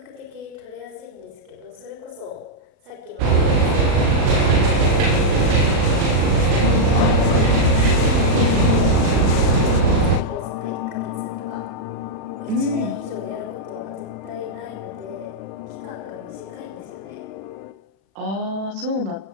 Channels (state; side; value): late; left; 36 ms